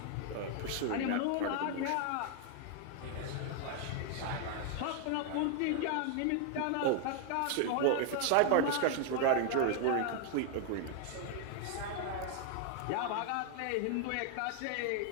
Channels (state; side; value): different; both; correlation 0.00